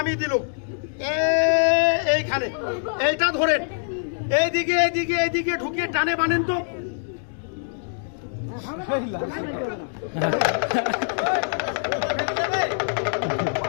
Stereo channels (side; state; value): right; silent; digital silence